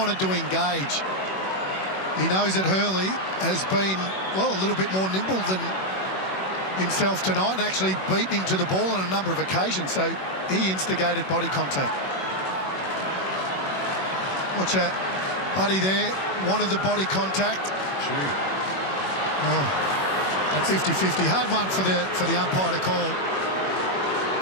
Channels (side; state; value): right; late; 21 ms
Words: to engage. He knows that Hurley has been, well, a little bit more nimble than himself tonight and actually beaten him to the ball on a number of occasions, so he instigated body contact. Watch that. Buddy there wanted the body contact. Oh, that's 50-50. Hard one for the umpire to call.